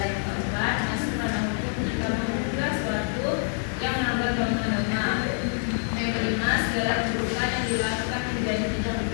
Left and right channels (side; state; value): right; silent; 55 dB below the other